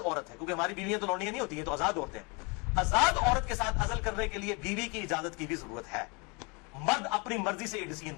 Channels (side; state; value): right; quieter; 30.7 dB